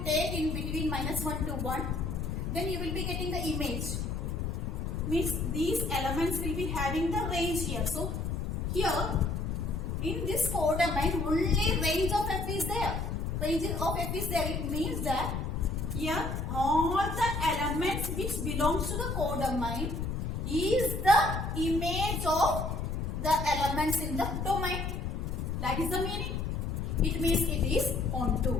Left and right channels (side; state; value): left; noise; rumble, 2 dB below the sound